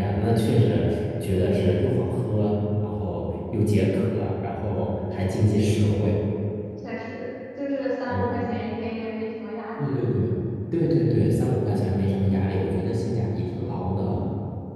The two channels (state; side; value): identical; both; correlation 1.00